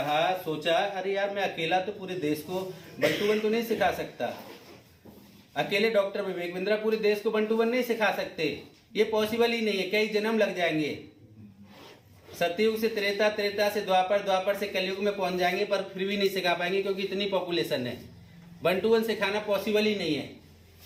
सोचा, अरे यार मैं अकेला तो पूरे देश को 1 to 1 तो नहीं सिखा सकता। अकेले डॉक्टर विवेक बिंद्रा पूरे देश को 1 to 1 नहीं सिखा सकते, ये पॉसिबल ही नहीं है, कई जन्म लग जाएंगे। सतयुग से त्रेता, त्रेता से द्वापर, द्वापर से कलयुग में पहुंच जाएंगे, पर फिर भी नहीं सिखा पाएंगे क्योंकि इतनी पॉपुलेशन है। 1 to 1 सिखाना पॉसिबल ही नहीं है।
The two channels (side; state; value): both; identical; correlation 1.00